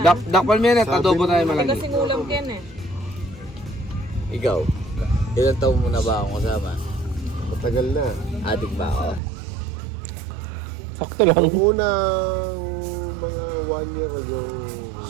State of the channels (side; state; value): left; drops out; at 9.2 s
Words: Dakpal mo yan at adobo tayo malagi. Kasing ulam ken eh. Ikaw, ilang taon mo na ba akong kasama? Matagal na. Addict ba ako? Sakto lang. Unang mga 1 year ago,